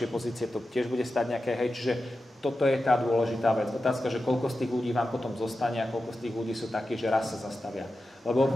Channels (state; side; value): normal; both; correlation 0.92